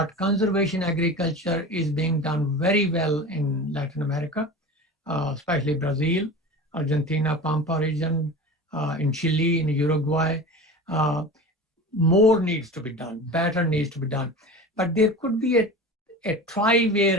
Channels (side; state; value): both; normal; correlation 0.33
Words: conservation agriculture is being done very well in Latin America, especially Brazil, Argentina, Pampa region, in Chile, in Uruguay. More needs to be done, better needs to be done. But there could be a tri-way